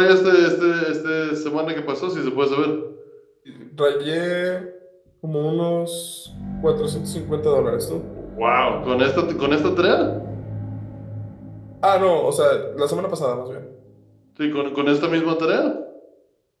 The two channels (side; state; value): both; identical; correlation 1.00